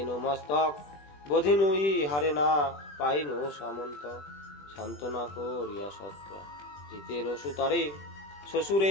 মস্তক বোধিনুই হারে না পাইনু সামন্ত সান্ত্বনা করিয়া সত্রা জিতের সুতারে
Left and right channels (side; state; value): right; late; 20 ms